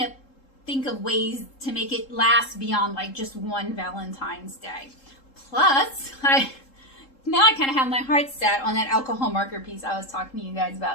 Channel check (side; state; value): right; late; 3.7 ms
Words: think of ways to make it last beyond like just one Valentine's Day. Plus, now I kind of have my heart set on that alcohol marker piece I was talking to you guys